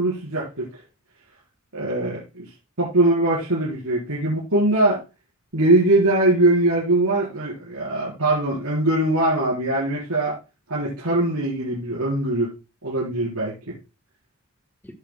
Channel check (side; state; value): both; normal; correlation 0.01